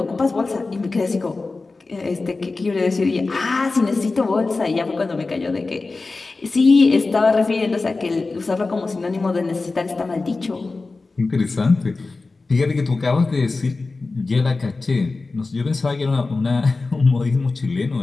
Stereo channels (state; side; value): quieter; right; 3.7 dB